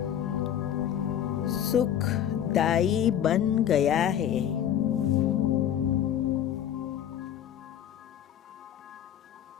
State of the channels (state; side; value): quieter; right; 10.2 dB